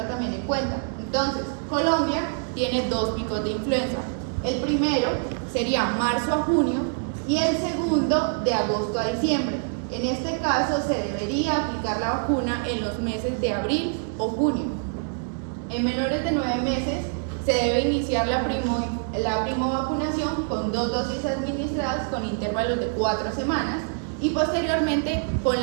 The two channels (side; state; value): left; silent; 60 dB below the other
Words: también en cuenta. Entonces, Colombia tiene 2 picos de influenza. El primero sería marzo a junio y el segundo de agosto a diciembre. En este caso se debería aplicar la vacuna en los meses de abril o junio. En menores de 9 meses se debe iniciar la primovacunación con 2 dosis administradas con intervalos de 4 semanas y posteriormente con